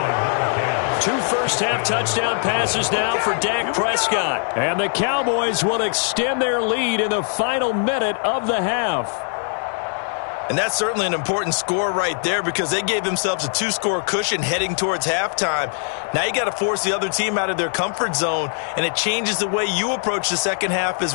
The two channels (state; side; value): silent; right; 58 dB below the other